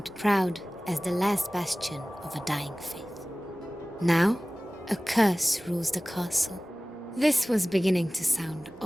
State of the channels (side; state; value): both; normal; correlation 0.98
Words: proud as the last bastion of a dying faith. Now, a curse rules the castle. This was beginning to sound